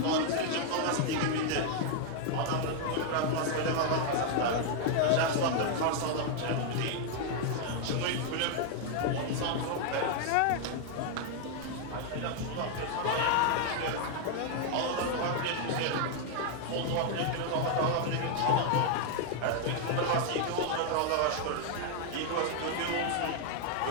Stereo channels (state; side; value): different; both; correlation 0.00